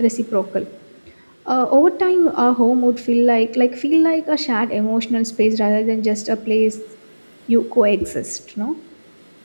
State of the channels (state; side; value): inverted; both; correlation -1.00